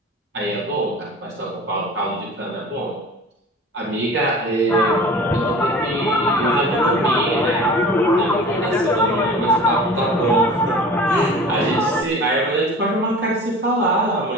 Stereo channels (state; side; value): normal; both; correlation 0.41